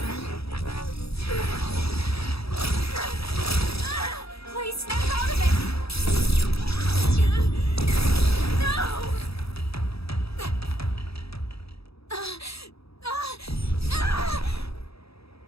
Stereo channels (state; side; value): late; right; 0.77 ms